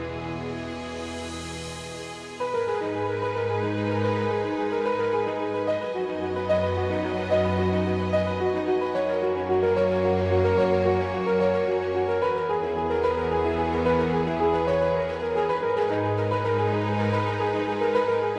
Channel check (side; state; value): both; identical; correlation 1.00